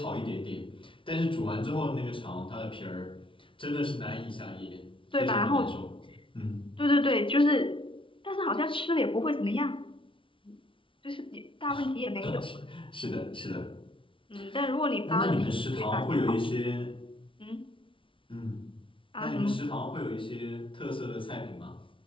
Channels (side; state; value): right; late; 0.25 ms